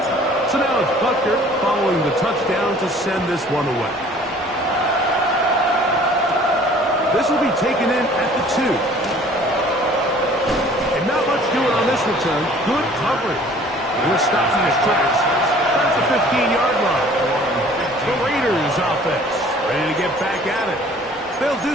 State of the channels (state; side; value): normal; both; correlation 0.52